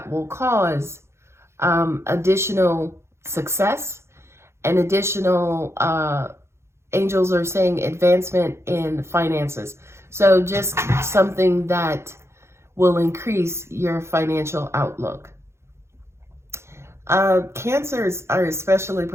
will cause additional success and additional, angels are saying, advancement in finances. So just something that will increase your financial outlook. Cancers are especially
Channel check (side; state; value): left; late; 0.13 ms